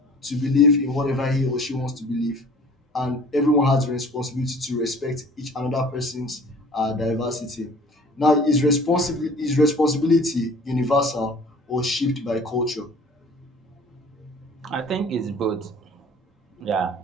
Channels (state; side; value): normal; both; correlation 0.48